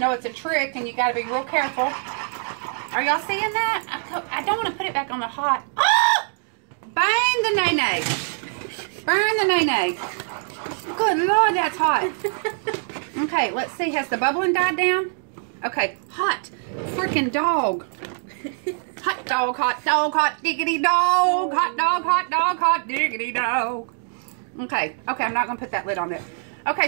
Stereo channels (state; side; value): silent; left; 59 dB below the other